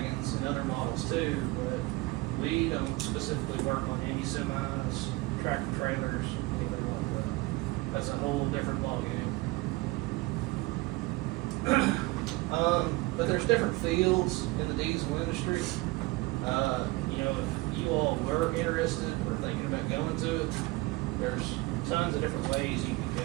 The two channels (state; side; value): quieter; left; 22.0 dB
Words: and other models too, but we don't specifically work on any semis, tractor trailers, anything like that. That's a whole different ballgame. But there's different fields in the diesel industry. If you all were interested or thinking about going to it, there's tons of different ways you can